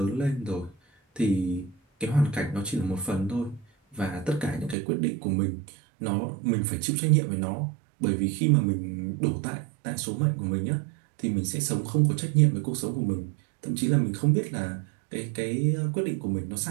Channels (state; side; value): drops out; left; at 4.8 s